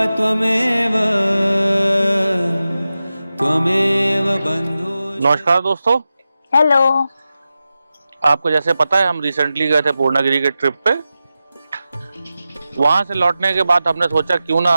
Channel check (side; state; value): both; inverted; correlation -0.93